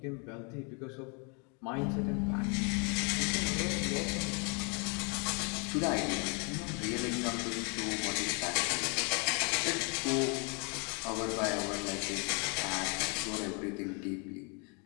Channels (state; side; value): quieter; right; 35.0 dB